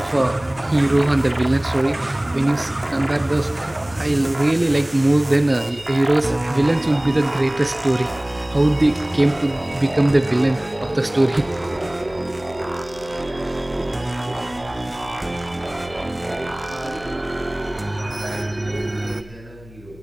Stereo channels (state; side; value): noise; left; hum, 22 dB below the sound